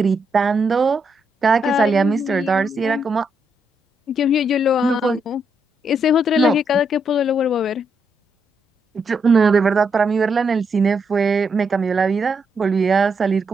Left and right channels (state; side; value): normal; both; correlation 0.79